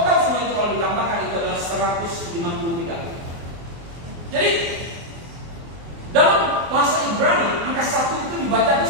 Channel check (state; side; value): late; left; 24 ms